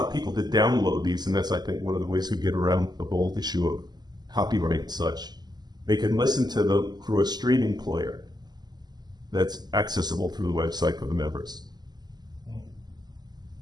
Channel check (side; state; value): left; late; 0.20 ms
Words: people to download these, and that's, I think, one of the ways we get around the whole issue of copyright and such. They can listen to them through a streaming player that's accessible through the website for the members.